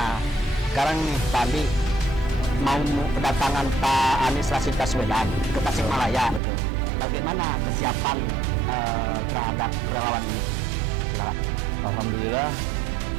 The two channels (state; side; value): drops out; left; at 6.4 s